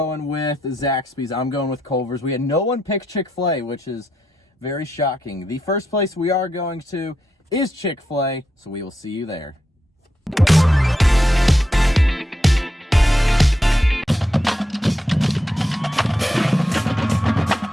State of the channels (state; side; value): normal; both; correlation 0.83